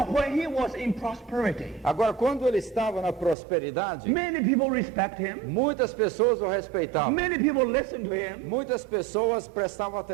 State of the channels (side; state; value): left; drops out; at 3.4 s